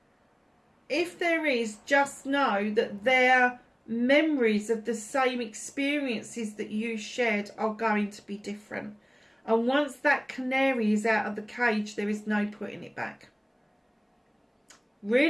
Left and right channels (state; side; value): identical; both; correlation 1.00